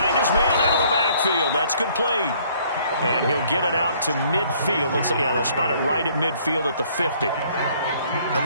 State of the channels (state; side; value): inverted; both; correlation -0.61